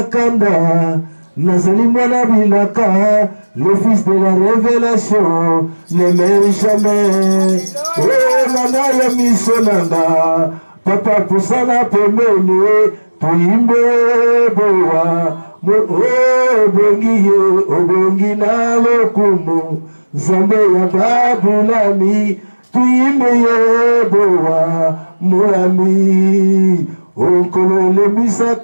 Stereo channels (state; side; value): inverted; both; correlation -1.00